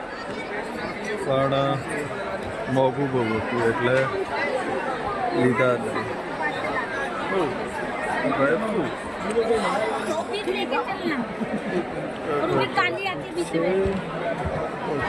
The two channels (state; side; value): identical; both; correlation 1.00